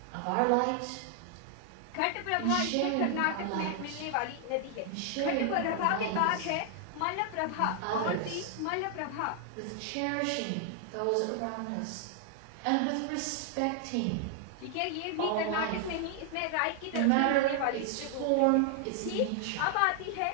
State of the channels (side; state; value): both; different; correlation 0.00